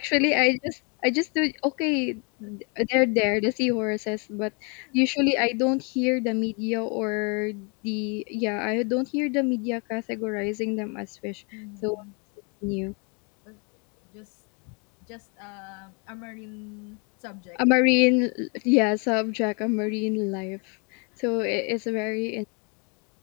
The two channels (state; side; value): quieter; right; 34.5 dB